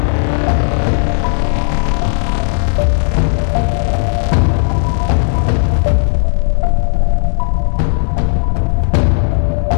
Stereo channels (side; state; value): right; silent; digital silence